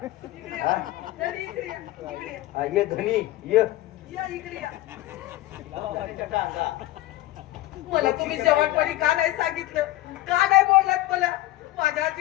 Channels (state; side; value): quieter; right; 16.7 dB